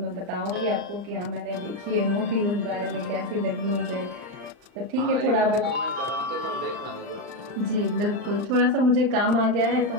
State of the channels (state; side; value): late; left; 39 ms